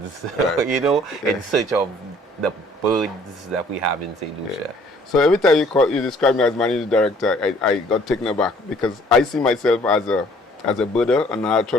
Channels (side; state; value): both; normal; correlation 0.58